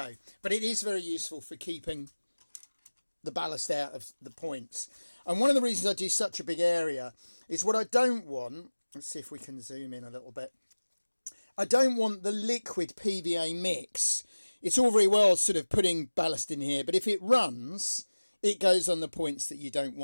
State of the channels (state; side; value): inverted; both; correlation -1.00